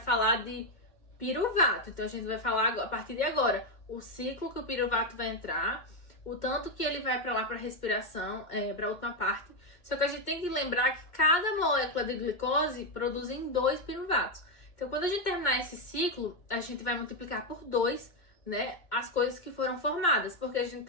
de piruvato. Então, a gente vai falar, a partir de agora, o ciclo que o piruvato vai entrar, o tanto que ele vai para lá para respiração, para a última parte. Só que a gente tem que lembrar que cada molécula de glicose produz 2 piruvatos. Então, quando a gente terminar esse ciclo, a gente vai multiplicar por 2, né, as coisas que foram formadas, porque a gente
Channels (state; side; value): late; right; 2.1 ms